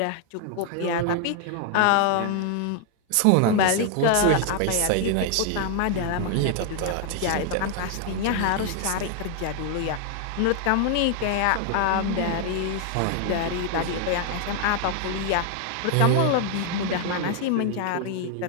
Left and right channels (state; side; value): different; both; correlation 0.00